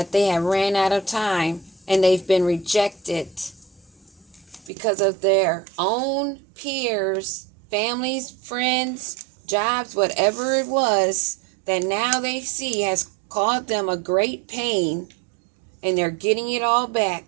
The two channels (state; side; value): drops out; left; at 4.7 s